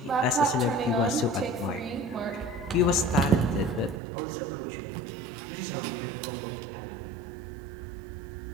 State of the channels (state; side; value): drops out; left; at 4.0 s